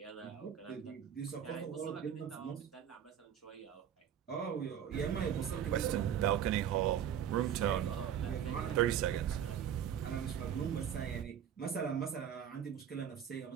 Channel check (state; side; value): quieter; left; 9.2 dB